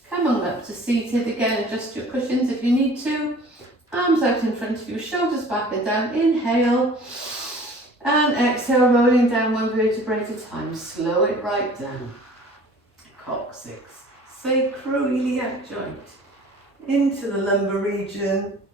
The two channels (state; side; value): normal; both; correlation 0.47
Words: come on up to seated, again adjust your cushions if you need to, arms out in front of you, shoulders back and down, inhale, and exhale, rolling down one vertebrae at a time. Slow it right down. Coccyx, sacroiliac joint. Into the lumbar region.